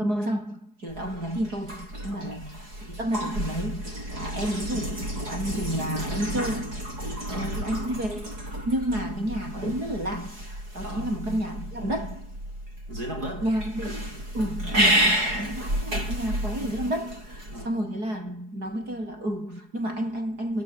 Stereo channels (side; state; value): left; late; 4.8 ms